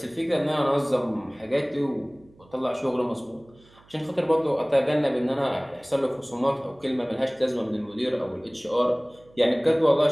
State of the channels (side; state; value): right; noise; hum, 28 dB below the sound